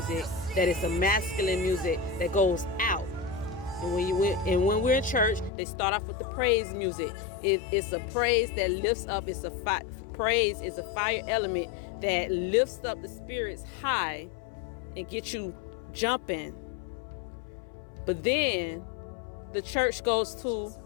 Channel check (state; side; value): drops out; right; at 5.5 s